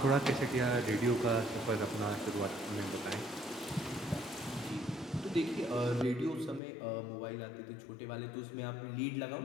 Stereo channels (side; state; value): right; drops out; at 6.6 s